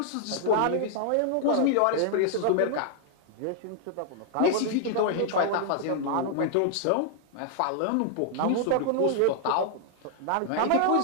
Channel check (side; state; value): both; different; correlation 0.00